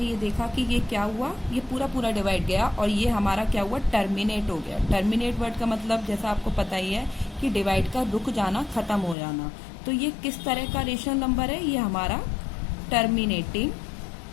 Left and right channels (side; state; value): right; drops out; at 9.2 s